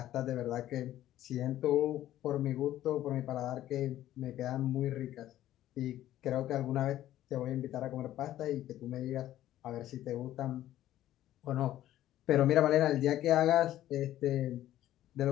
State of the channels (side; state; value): right; quieter; 13.3 dB